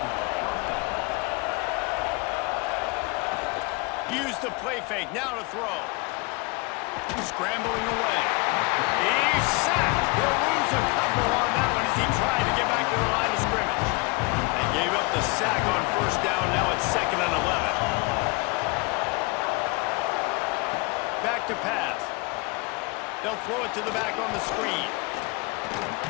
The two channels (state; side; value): quieter; right; 27.2 dB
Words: Use the play fake, now to throw. Scrambling away. He's sacked. He'll lose a couple on that one as he tried to get back to the line of scrimmage. They gave up the sack on first down, now it's 2nd and 11. Back to pass. They'll throw it to the back on the screen.